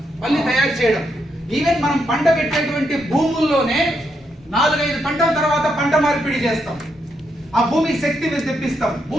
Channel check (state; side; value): normal; both; correlation 0.80